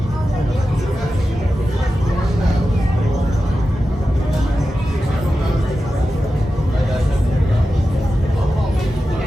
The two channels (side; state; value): both; normal; correlation 0.92